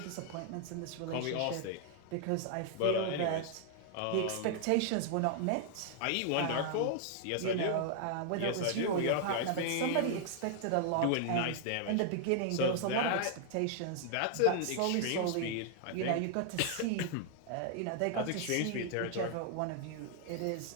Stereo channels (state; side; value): different; both; correlation 0.00